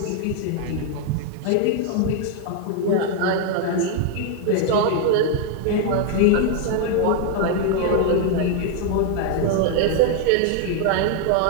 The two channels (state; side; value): different; both; correlation 0.00